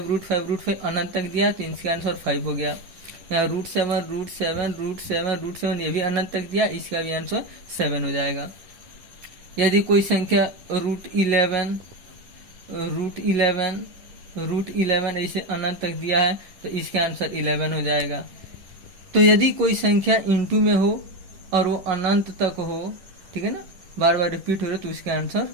अनंत तक दिया तो इसका आंसर 5 हो गया। यहाँ √7 ये भी अनंत तक दिया, इसका भी आंसर 7 हो जाएगा। यदि कोई संख्या √11 ऐसे अनंत तक दिया है तो इसका आंसर 11 हो जाएगा। तो यदि कोई संख्या इंटू में हो और वो अनंत तक हो, ठीक है ना, बार बार रिपीट हो रहा तो उसका आंसर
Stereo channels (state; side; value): late; left; 10 ms